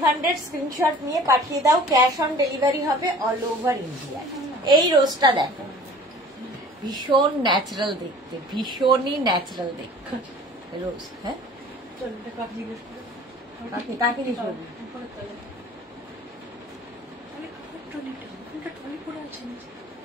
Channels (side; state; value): both; normal; correlation 0.47